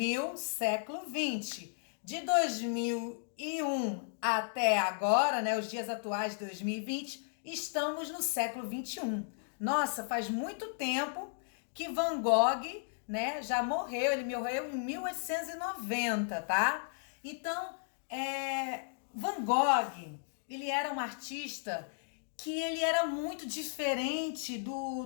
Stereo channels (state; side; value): silent; right; digital silence